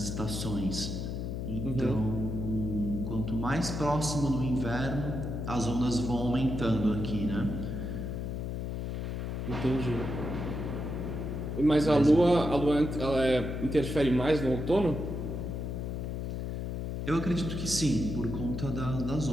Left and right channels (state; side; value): noise; left; hum, 3 dB below the sound